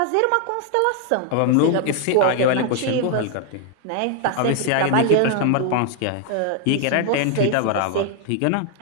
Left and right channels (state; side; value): different; both; correlation 0.00